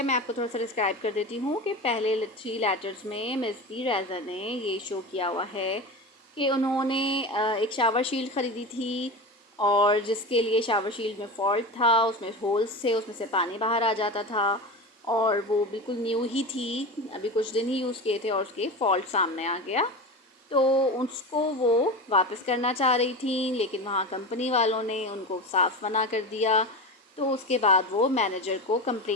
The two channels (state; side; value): normal; both; correlation 0.26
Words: मैं आपको थोड़ा सा describe कर देती हूँ कि पहले 3 लेटर्स में मिस पी रेज़ा ने ये शो किया हुआ है कि उन्होंने एक शावर शील्ड ख़रीदी थी और जिसके लिए शावर शील्ड में फॉल्ट था, उसमें होल्स थे, उसमें से पानी बाहर आ जाता था और वो बिल्कुल न्यू ही थी, अभी कुछ दिन ही यूज़ किए थे और उसके फॉल्ट सामने आ गया। तो उसको वो वापस करना चाह रही थी, लेकिन वहाँ कंपनी वालों ने उनको साफ मना कर दिया। तो उसके बाद वो मैनेजर को